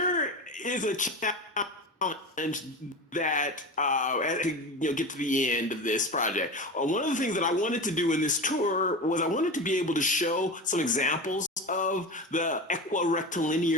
is a challenge that as we get to the end of this project. One of the things that I wanted to do in this tour was I wanted to be able to show some examples of the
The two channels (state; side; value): normal; both; correlation 0.26